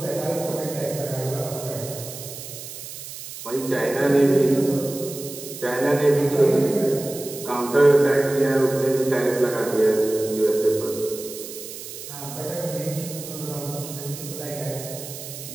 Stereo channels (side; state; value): right; noise; hiss, 11 dB below the sound